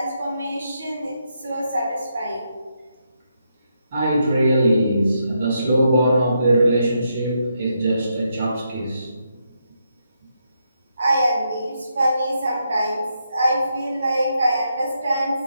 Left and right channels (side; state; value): both; inverted; correlation -0.80